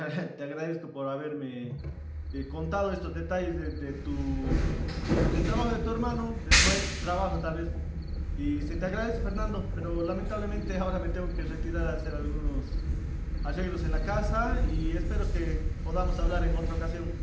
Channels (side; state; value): both; identical; correlation 1.00